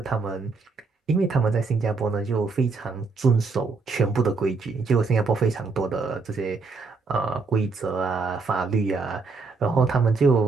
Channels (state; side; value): quieter; left; 4.3 dB